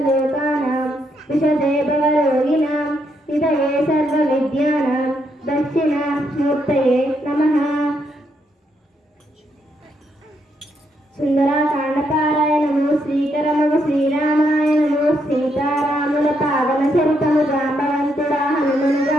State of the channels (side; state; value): both; normal; correlation 0.77